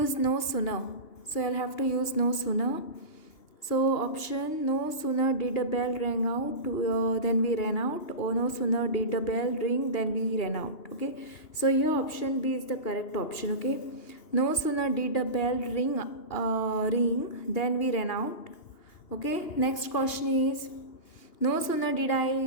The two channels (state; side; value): late; right; 2.8 ms